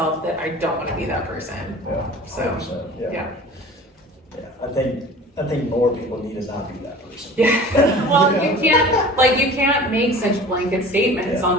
that I don't want to be that person. So, I think more people need to not be that person. Well, you can't make such blanket statements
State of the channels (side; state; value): both; normal; correlation 0.42